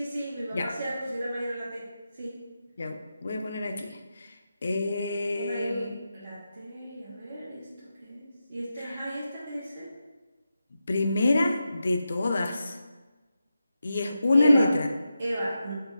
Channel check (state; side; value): inverted; both; correlation -0.89